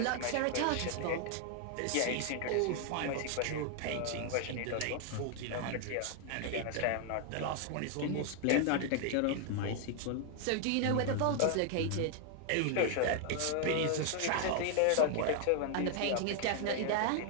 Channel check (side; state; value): both; different; correlation 0.00